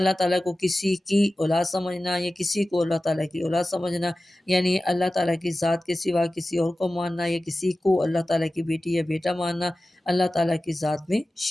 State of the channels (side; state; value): both; normal; correlation 0.95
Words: تعالیٰ کو کسی کی اولاد سمجھنا، یا کسی کو اللہ تعالیٰ کی اولاد سمجھنا، یعنی اللہ تعالیٰ کی ذات کے سوا کسی اور کو ماننا، یا کسی کو اللہ تعالیٰ کی بیٹی یا بیٹا ماننا اللہ تعالیٰ کی ذات میں